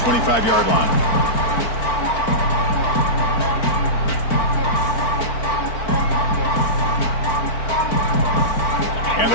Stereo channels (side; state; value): right; late; 4.5 ms